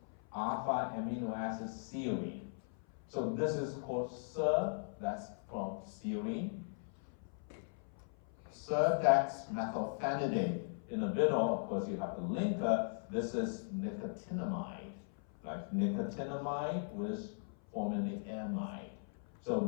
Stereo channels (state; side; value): silent; right; 52 dB below the other